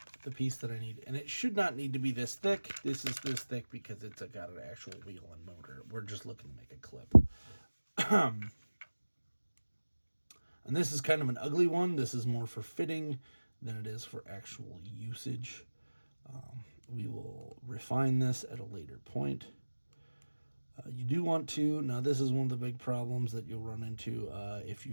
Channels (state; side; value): inverted; both; correlation -1.00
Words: piece that I need. And it should not need to be this thick. This is this thick because it's got an actual wheel and motor. We're just looking to make a clip. And this is kind of an ugly one. This is more for fitting than it is for actual usage. We will refine this at a later point. You do want to, now this is one of the big problems that you'll run into if